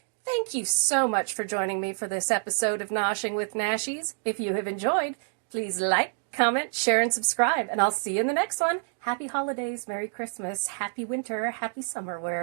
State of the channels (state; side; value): silent; left; 60 dB below the other